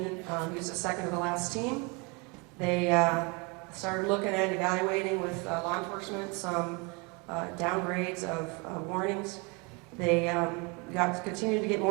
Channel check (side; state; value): left; quieter; 30.2 dB